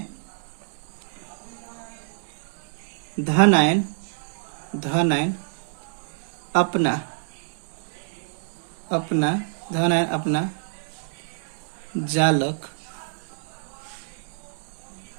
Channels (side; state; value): left; silent; digital silence